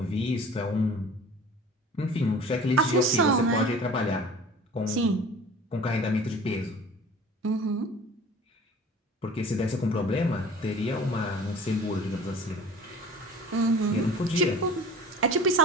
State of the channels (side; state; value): both; normal; correlation 0.43